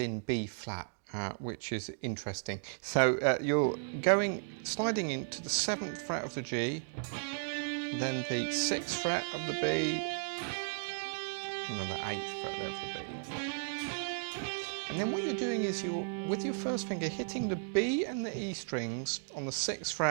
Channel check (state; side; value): silent; left; digital silence